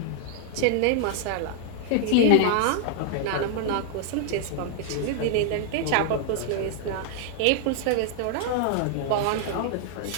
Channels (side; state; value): both; different; correlation 0.00